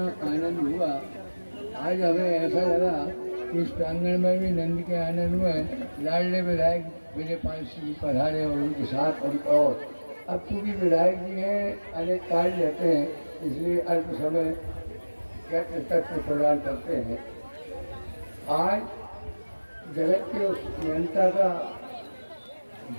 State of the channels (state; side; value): inverted; both; correlation -1.00